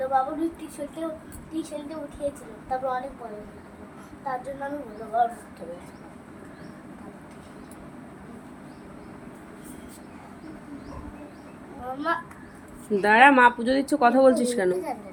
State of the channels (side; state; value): both; identical; correlation 1.00